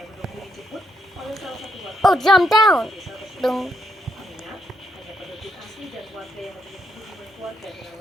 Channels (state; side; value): normal; both; correlation 0.77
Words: menunggu dijemput oleh salah satu warga Oh, jump down. desa tersebut. Dong. Mengingat hanya penduduk asli dan warga yang memiliki hubungan keluarga dengan